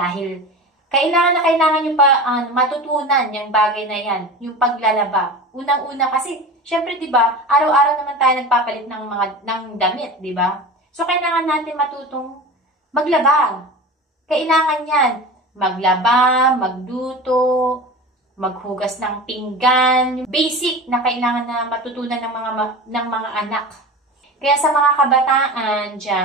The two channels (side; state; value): both; normal; correlation 0.32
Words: kailangan nyo pa matutunan yung bagay na yan, yung paglalaba. Unang-una kasi, syempre 'di ba, araw-araw naman tayo nagpapalit ng damit, 'di ba? So, kailangan natin matutong maglaba. Kailangan yan. Maglaba, magluto, maghugas ng pinggan. Basic na kailangan na matutunan ng mga anak. Kaya sa mga kabataan